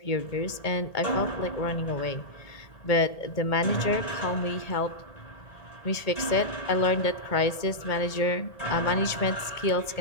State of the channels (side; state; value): right; late; 1.8 ms